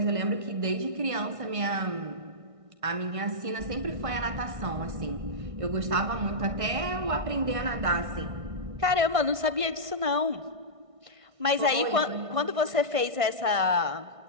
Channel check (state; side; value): late; left; 1.6 ms